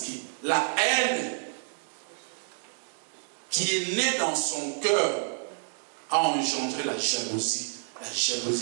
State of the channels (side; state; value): left; silent; 59 dB below the other